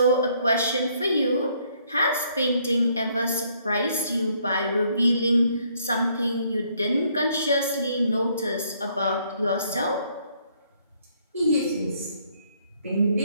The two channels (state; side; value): inverted; both; correlation -0.67